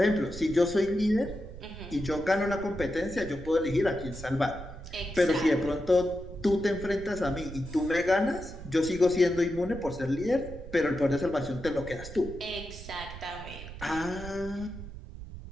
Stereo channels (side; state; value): right; noise; rumble, 12 dB below the sound